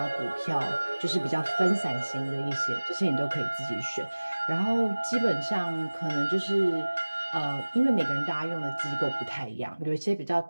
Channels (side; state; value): both; inverted; correlation -1.00